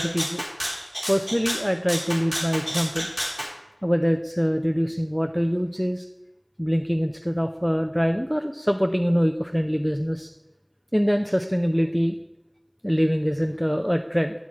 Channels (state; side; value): identical; both; correlation 1.00